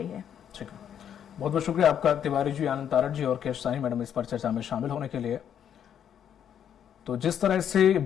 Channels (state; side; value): quieter; right; 9.1 dB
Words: है। ठीक है, बहुत बहुत शुक्रिया आपका तिवारी जी, आनंद तारड़ जी और केशसानी मैडम इस पर चर्चा में शामिल होने के लिए। तो जिस तरह से